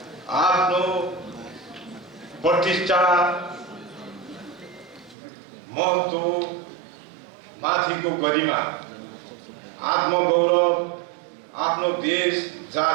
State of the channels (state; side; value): drops out; left; at 5.2 s